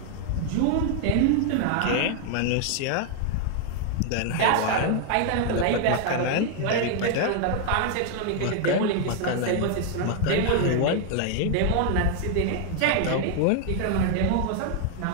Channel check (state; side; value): different; both; correlation 0.00